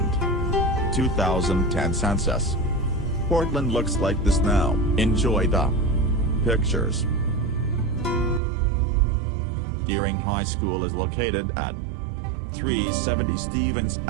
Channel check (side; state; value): left; drops out; at 8.4 s